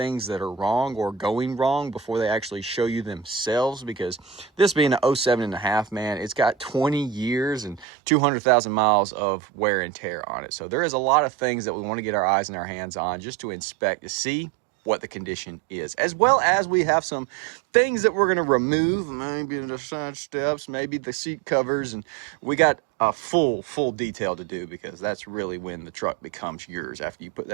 that are wrong or going wrong before they actually show you themselves, because this being an 07.5, man, it's got 20 years and 200,000 miles of wear and tear on it. So there is a lot of things that we want to get our eyes and our hands on just to inspect to see what the condition is, as well as we have some things that we're going to remove, maybe the side steps, maybe the seat covers, and we got a full detail to do, because that's really when the truck becomes yours, after you put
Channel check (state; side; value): drops out; left; at 7.9 s